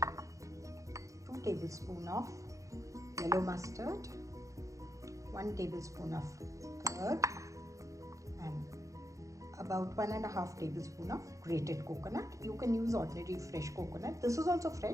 2 tablespoons of yellow mustard, 1 tablespoon of curd, and about 1.5 tablespoons of grated coconut. You can use ordinary fresh coconut. This is also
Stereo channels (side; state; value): left; late; 0.15 ms